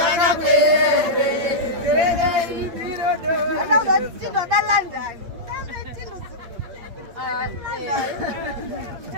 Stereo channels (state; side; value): late; left; 8.9 ms